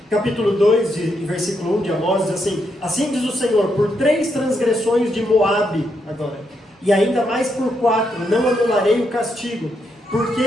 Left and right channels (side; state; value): both; normal; correlation 0.80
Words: Capítulo 2, versículo 1 de Amós, diz assim: assim diz o Senhor, por 3 transgressões de Moabe, agora, e ainda mais por 4, não anularei o castigo, porque